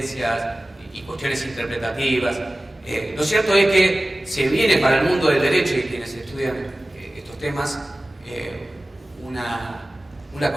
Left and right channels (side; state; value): both; normal; correlation 0.97